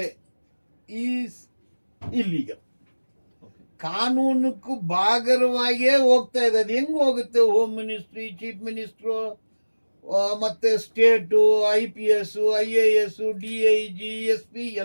is illegal. ಕಾನೂನಕ್ಕೂ ಬಾಗರವಾಗಿಯೇ ಹೋಗ್ತಾ ಇದೆ. ಅದು ಹೆಂಗ್ ಹೋಗುತ್ತೆ? ಹೋಮ್ ಮಿನಿಸ್ಟ್ರಿ, ಚೀಫ್ ಮಿನಿಸ್ಟ್ರು, ಮತ್ತೆ state, IPS, IAS, DIG, SP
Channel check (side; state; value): both; inverted; correlation -1.00